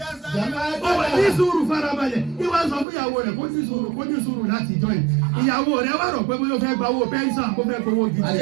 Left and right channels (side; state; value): left; drops out; at 2.9 s